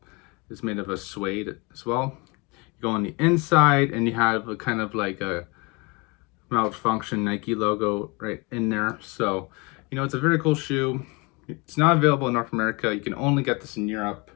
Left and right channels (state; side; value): quieter; right; 28.1 dB